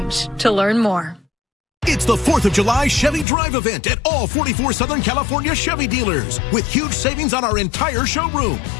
to learn more. It's the 4th of July Chevy Drive event at all 44 Southern California Chevy dealers with huge savings on our entire showroom,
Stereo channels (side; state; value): right; drops out; at 3.2 s